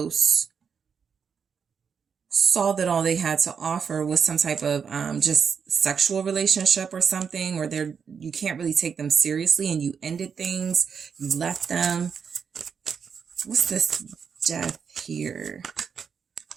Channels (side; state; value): left; quieter; 6.6 dB